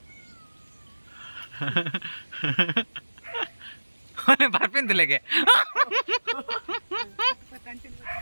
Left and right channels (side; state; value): both; inverted; correlation -1.00